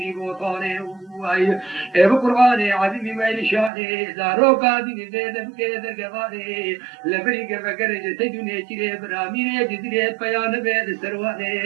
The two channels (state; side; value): drops out; left; at 3.7 s